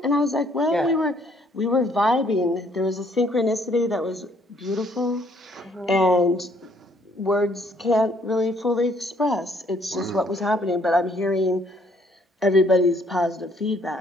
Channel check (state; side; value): normal; both; correlation 0.64